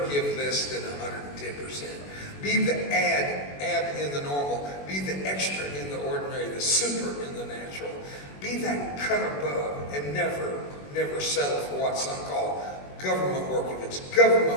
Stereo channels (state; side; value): late; right; 21 ms